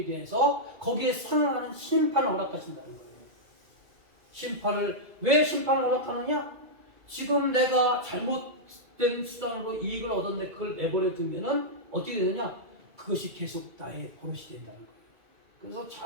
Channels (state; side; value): late; left; 2.3 ms